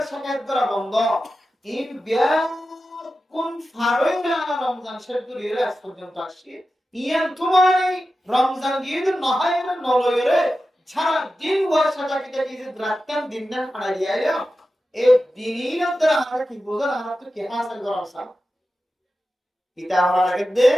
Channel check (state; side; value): normal; both; correlation 0.93